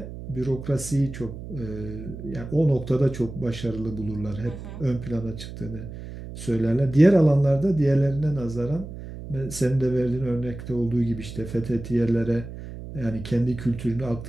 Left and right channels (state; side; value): noise; right; hum, 11 dB below the sound